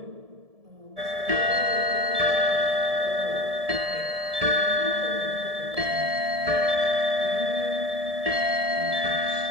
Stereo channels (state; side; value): late; left; 1.7 ms